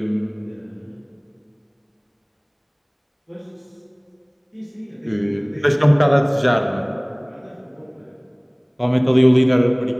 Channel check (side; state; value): both; identical; correlation 1.00